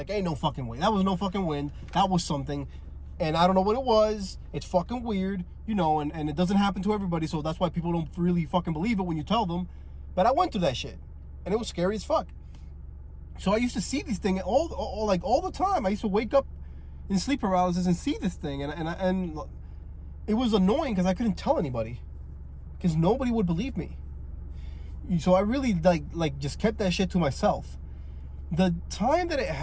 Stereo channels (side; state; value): both; identical; correlation 1.00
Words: ain't no fucking way. That was no fucking wind. That was something. And I don't know what it was. It's fucking weird, you know, and it doesn't happen to everybody. So that's why people don't really fucking believe it when you tell them. But I went through that shit. And it was scary as fuck. So I used to see these things all the time. I used to wake up in sleep paralysis and see this thing. And it was annoying because I couldn't tell anybody. Because nobody would believe me. So I really like just kept that shit to myself. The time that it